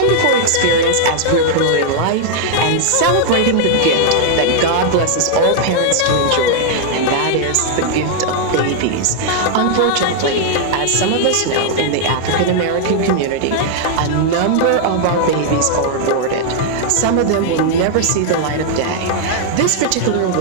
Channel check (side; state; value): both; different; correlation 0.00